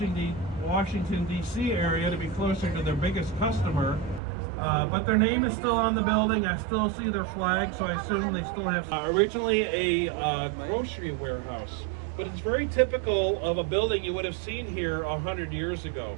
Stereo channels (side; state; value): left; drops out; at 4.2 s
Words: D.C. area to be closer to their biggest customer. But their name is still on the building. I still see their flag, so I assume they still have originally a grocery warehouse. But it's very typical of a building you would have seen here 100 years